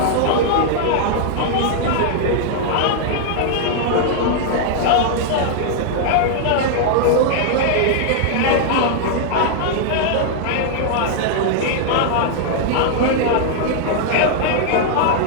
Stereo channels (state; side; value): different; both; correlation -0.01